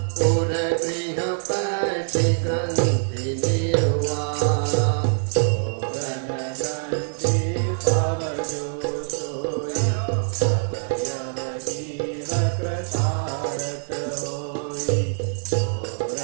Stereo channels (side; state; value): left; silent; digital silence